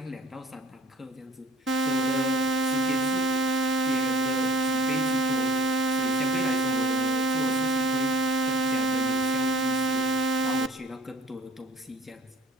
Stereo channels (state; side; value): normal; both; correlation 0.47